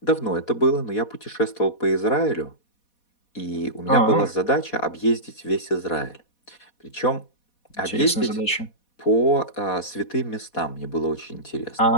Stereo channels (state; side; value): late; right; 4.2 ms